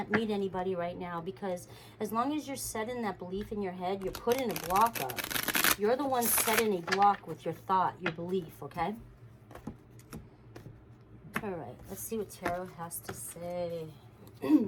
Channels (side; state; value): both; identical; correlation 1.00